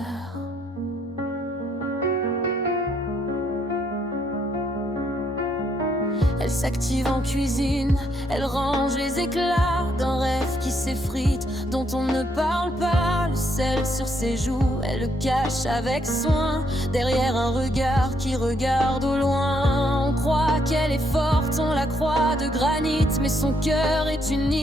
Elle s'active en cuisine, elle range les éclats d'un rêve qui s'effrite, dont on ne parle pas. Le sel sur ses joues, elle le cache avec soin, derrière un regard qui regarde au loin. On croit qu'elle est forte, on la croit de granit, mais son cœur est une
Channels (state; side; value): normal; both; correlation 0.73